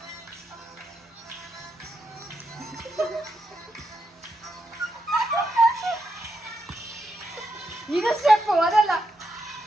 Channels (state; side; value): normal; both; correlation 0.83